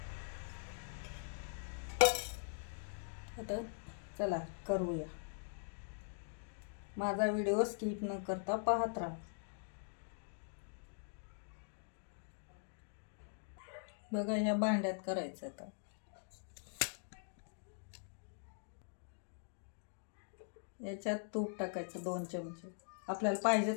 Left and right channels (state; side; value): silent; right; digital silence